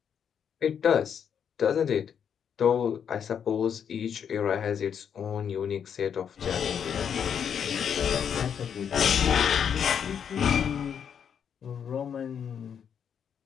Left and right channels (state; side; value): quieter; right; 7.9 dB